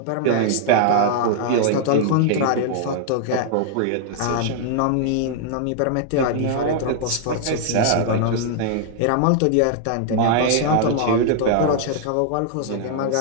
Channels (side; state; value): both; different; correlation 0.00